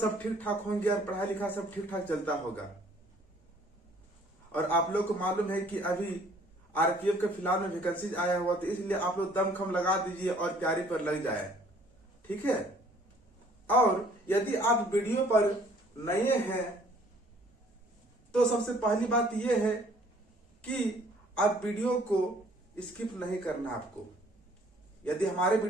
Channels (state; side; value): normal; both; correlation 0.58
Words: ठीक ठाक होंगे और पढ़ाई लिखाई सब ठीक ठाक चलता होगा। और आप लोग को मालूम है कि अभी आरपीएफ के फिलहाल में वैकेंसी आया हुआ, तो इसलिए आप लोग दमखम लगा दीजिए और तैयारी पर लग जाए। ठीक है? और यदि आप वीडियो पर नए हैं तो सबसे पहली बात यह है कि आप वीडियो को स्किप नहीं करना। आपको यदि हमारे